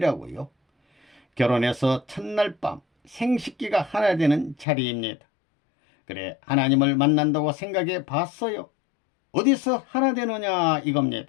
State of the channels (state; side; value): drops out; right; at 4.7 s